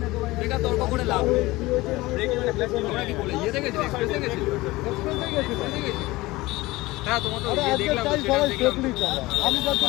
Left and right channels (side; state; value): right; quieter; 20.0 dB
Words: বেকার তর্ক করে লাভ নেই। তোমরা কি বলে ইয়ে দেখেছি, এক্সপ্রেসে গেছি? হ্যাঁ, তোমার তো আরে ইয়ে আজকে দেখলাম, চাই সেটা সবাই দেখলাম। সেফলি চালা। আমি যার